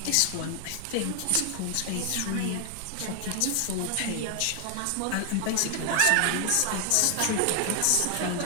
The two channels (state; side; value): different; both; correlation 0.00